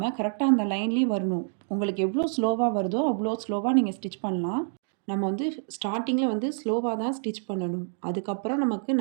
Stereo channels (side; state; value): left; silent; digital silence